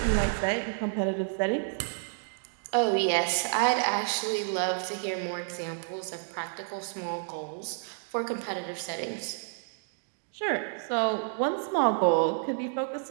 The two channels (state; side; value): silent; left; digital silence